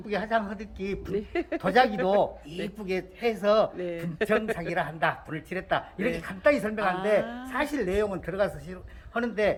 화장하듯이 도자기도 이쁘게 해서 네. 분청사기라 한다. 불을 칠했다. 이렇게 네. 간단히 설명하는데 아. 사실 내용은 들어가서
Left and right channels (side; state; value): both; identical; correlation 1.00